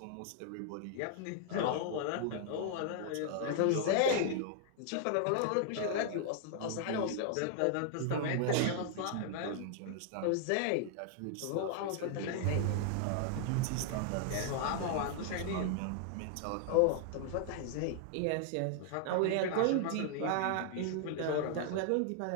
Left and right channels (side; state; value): both; different; correlation 0.00